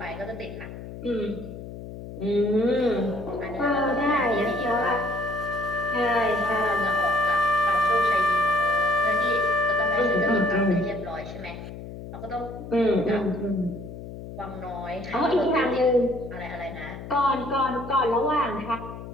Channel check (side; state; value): left; noise; hum, 11 dB below the sound